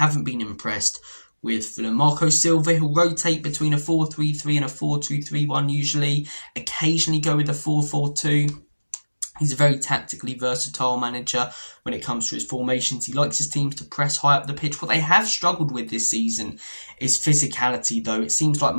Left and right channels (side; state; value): both; inverted; correlation -1.00